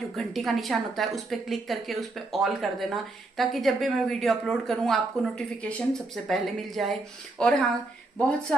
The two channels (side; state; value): left; quieter; 3.1 dB